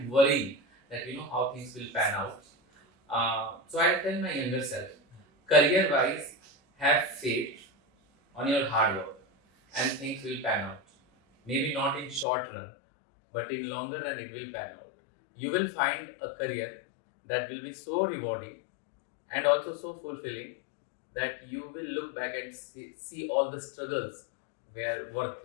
worrying that how things will pan out. So I tell my younger self, career wise, have faith on your hard work and things will pan out. Maybe not in short run, but in longer run it will pan out. You will find a career that will be so rewarding and also so fulfilling that you will look back and see all the struggles were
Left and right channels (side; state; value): right; drops out; at 12.2 s